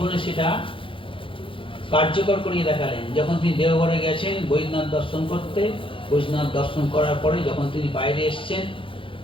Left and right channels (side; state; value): right; late; 0.25 ms